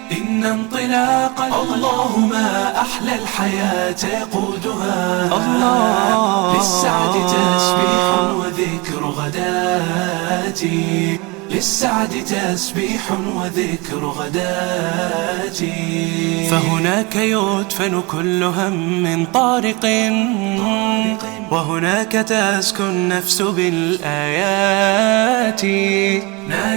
إن انطلاق الله ما أحلى الحياة يقودها، للسعد تسبيح وذكر غداتي، للسعد تسبيح وذكر غداتي. فهناك يدفن كل هم طارق، وهناك تسكن النفس بالآيات.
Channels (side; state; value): left; quieter; 26.6 dB